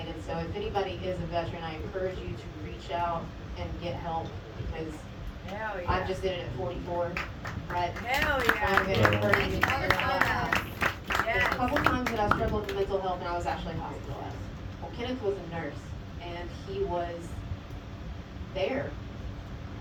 So if anybody is a veteran, I encourage you to reach out and get help because Hell yeah. I just did it at 44, right? Hell So I'm yeah. gonna encourage you to Other figure out side. There's a Yes. couple times that I struggled with mental health and I was actually hospitalized. Well, Kenneth was a nurse and he was there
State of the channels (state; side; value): identical; both; correlation 1.00